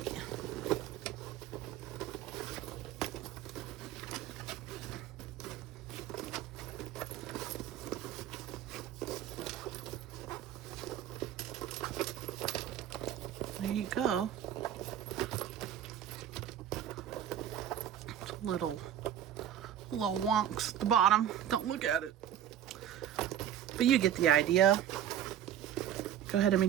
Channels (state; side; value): quieter; left; 10.4 dB